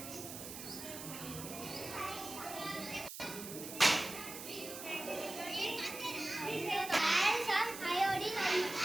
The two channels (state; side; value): noise; right; hiss, 10 dB below the sound